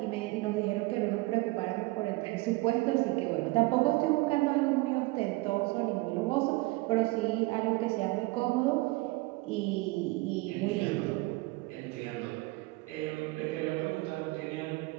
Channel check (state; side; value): quieter; left; 22.7 dB